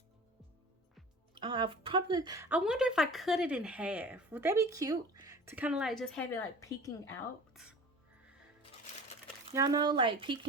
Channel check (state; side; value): normal; both; correlation 0.40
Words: I wonder if I cut it in half. Would that be cute? To kind of like just have it like peeking out. Y'all know, like